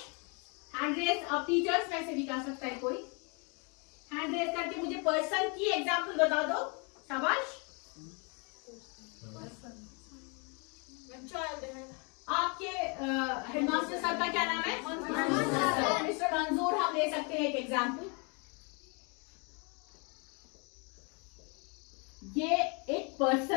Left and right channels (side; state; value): right; quieter; 33.9 dB